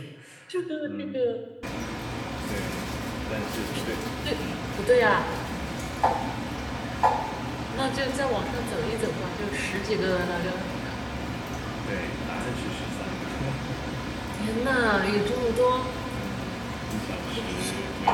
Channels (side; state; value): both; identical; correlation 1.00